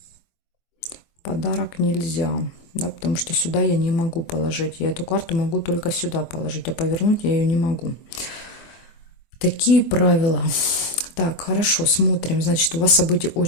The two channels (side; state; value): right; late; 24 ms